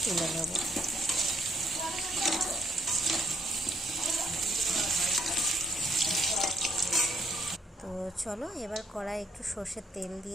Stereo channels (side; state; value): both; normal; correlation 0.69